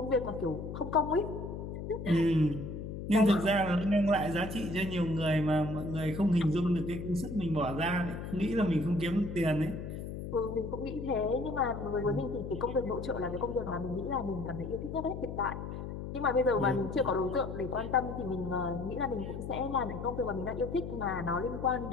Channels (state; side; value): noise; left; hum, 7 dB below the sound